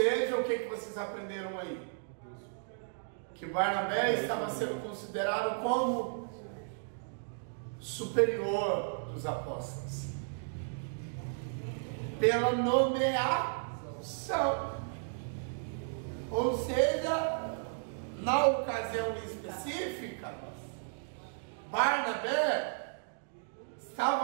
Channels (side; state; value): left; silent; digital silence